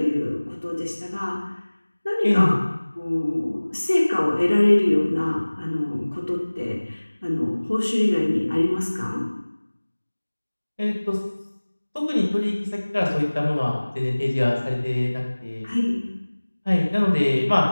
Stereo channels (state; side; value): inverted; both; correlation -1.00